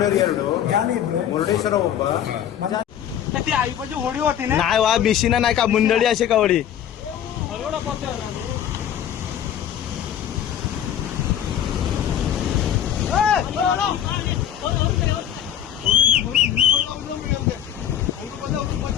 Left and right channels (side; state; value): right; quieter; 10.0 dB